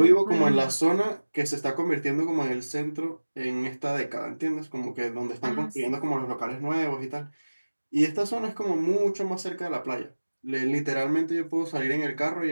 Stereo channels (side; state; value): both; inverted; correlation -1.00